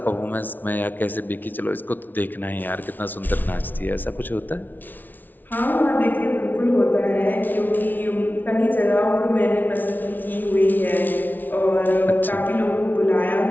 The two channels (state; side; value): late; right; 0.086 ms